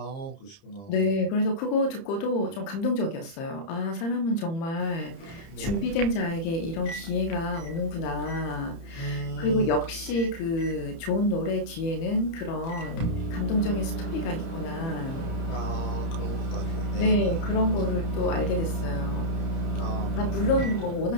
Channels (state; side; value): late; right; 30 ms